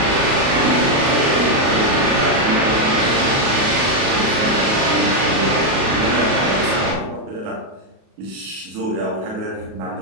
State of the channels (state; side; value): late; left; 37 ms